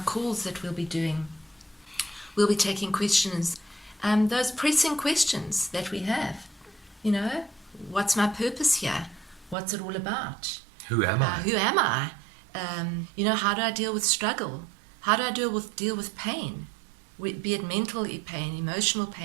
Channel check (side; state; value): left; drops out; at 9.6 s